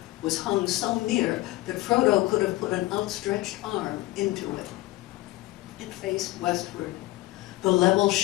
was hung so near that Frodo could have put an outstretched arm into it. It faced westward. The level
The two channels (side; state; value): right; quieter; 18.6 dB